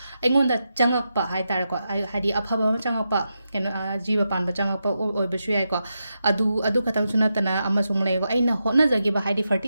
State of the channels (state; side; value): inverted; both; correlation -0.87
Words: ꯑꯩꯉꯣꯟꯗ ꯆꯪꯉꯛꯄ ꯍꯥꯏꯇꯥꯔꯦꯀꯣ ꯍꯥꯏꯗꯤ ꯑꯐꯕ ꯑꯃ ꯆꯪꯉꯛꯄ ꯀꯩꯅꯣ ꯖꯤꯕ ꯄꯥꯟꯕ ꯆꯪꯉꯛꯄ ꯑꯣꯏꯕꯁꯨ ꯌꯥꯏꯀꯣ ꯑꯗꯨ ꯈꯇꯪꯁꯨ ꯅꯠꯇꯅ ꯑꯃꯁꯨꯡ ꯂꯩꯀꯣ ꯑꯩꯅ ꯍꯣꯠꯅꯖꯈꯤꯕ ꯍꯥꯏꯗꯤ